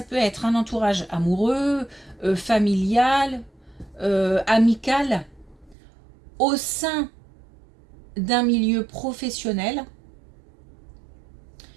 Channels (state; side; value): drops out; left; at 5.8 s